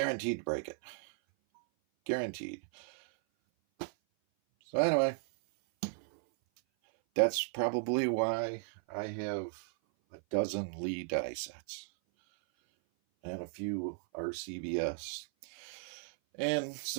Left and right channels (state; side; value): silent; left; 54 dB below the other